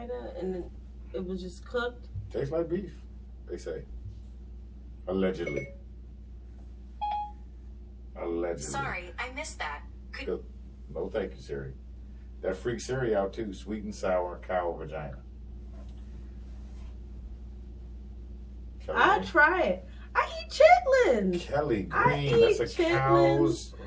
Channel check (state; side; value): identical; both; correlation 1.00